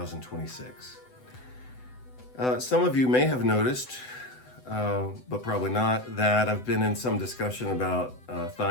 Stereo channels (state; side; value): late; right; 7.9 ms